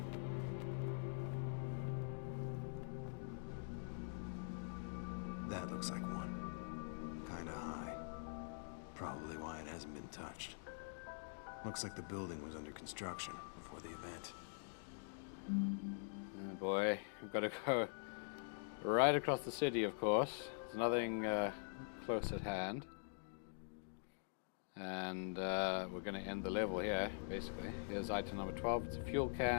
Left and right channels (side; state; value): right; silent; digital silence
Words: That looks like one. Kinda high. Probably why it hasn't been touched. Looks like the building was under construction before the event. Oh boy, we've got to go right across the city, of course. There's nothing close at hand. And we're going to end the level here, basically. Here's item number 12. It's a fuel